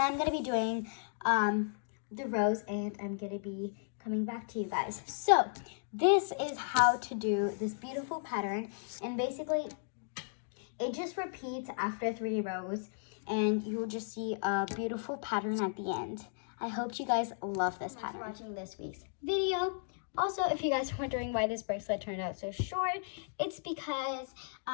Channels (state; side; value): silent; right; digital silence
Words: I'm gonna be doing the rows, and I'm gonna be coming back to you guys. So this is how to do this beautiful pattern, and basically it just repeats after 3 rows, and you'll just see a beautiful pattern at the end. I hope you guys love this pattern. Thanks for watching this week's video. Also, if you guys are wondering why this bracelet turned out so short, it's because